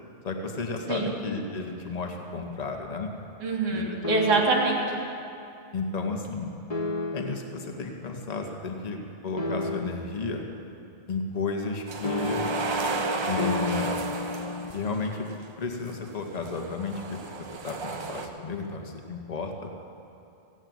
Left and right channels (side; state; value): right; late; 1.3 ms